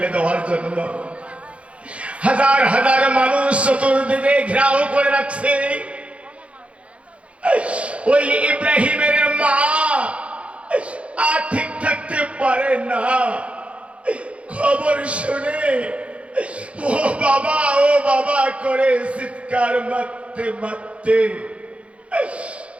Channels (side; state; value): left; late; 0.062 ms